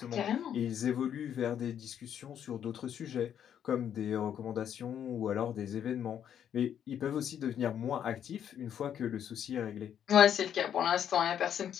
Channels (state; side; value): quieter; right; 9.3 dB